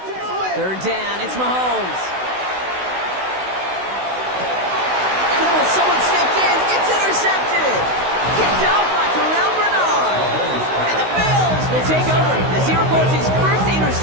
Third down, it's Mahomes. Oh, someone stepped in. It's intercepted. Kicked off by Terrell Bernard. And the Bills will take over as he records his 1st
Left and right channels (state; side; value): late; left; 16 ms